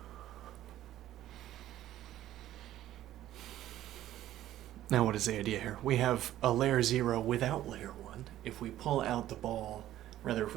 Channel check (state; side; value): quieter; left; 13.3 dB